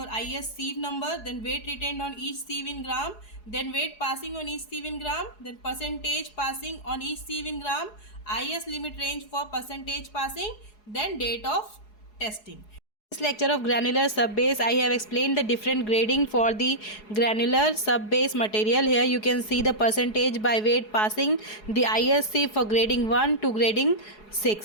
IS sieve number, then weight retained on each sieve in gram, then weight passing on each sieve in gram, then percentage passing on each sieve in gram, IS limit range for percentage passing, then date of testing. This lecture of granular sub-base, I have explained the different grading for the granular sub-base material. Here you can see the percentage by weight passing, the ISC for grading 1 to grading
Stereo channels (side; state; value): right; late; 4.7 ms